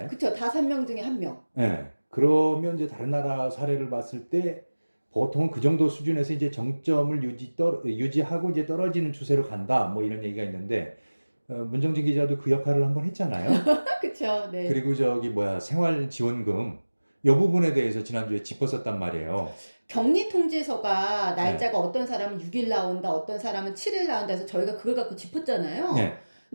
그쵸. 5명 중에 1명. 네. 그러면 이제 다른 나라 사례를 봤을 때 보통 그 정도 수준에서 이제 정점을 유지하고 이제 떨어지는 추세로 간다. 뭐 이런 얘기가 있는데, 문정진 기자도 그 역할을 한번 했잖아요. 그쵸. 네. 그리고 생활지원금 이 부분에 대해서 지난주에 짚었었단 말이에요. 격리 통지서가 날짜가 어떤 사람은 6일 나온다, 어떤 사람은 7일 나온다 해서 저희가 그걸 갖고 짚었잖아요. 네.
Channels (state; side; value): inverted; both; correlation -1.00